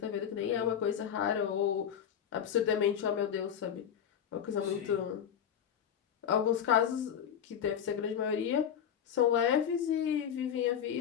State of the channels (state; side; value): quieter; right; 8.8 dB